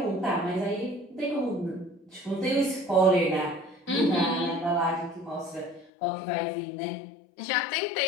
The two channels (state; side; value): drops out; right; at 5.9 s